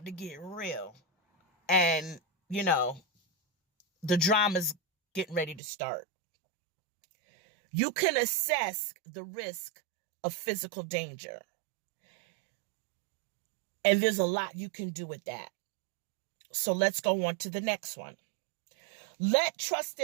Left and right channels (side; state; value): left; drops out; at 5.6 s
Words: to get real. And, the drama's getting ready to start. You can assess the risk of physical danger. And there's a lot you can do with that. So let's go on to the next one. Let